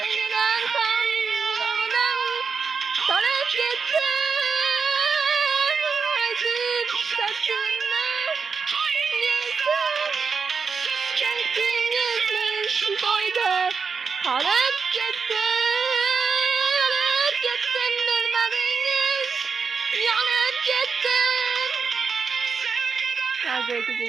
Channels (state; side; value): quieter; left; 5.4 dB